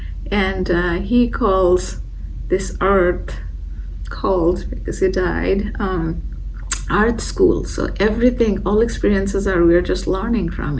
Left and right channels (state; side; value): identical; both; correlation 1.00